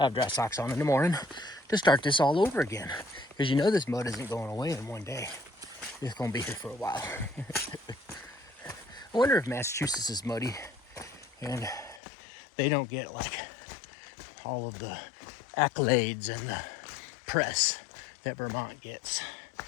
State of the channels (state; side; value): drops out; right; at 12.0 s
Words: have dry socks on in the morning to start this all over again. Because you know this mud isn't going away in one day. It's going to be here for a while. I wonder if Massachusetts is muddy and they don't get like all of the accolades and the press that Vermont gets.